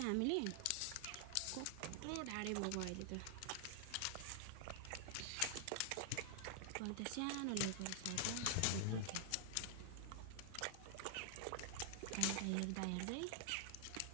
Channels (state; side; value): different; both; correlation 0.00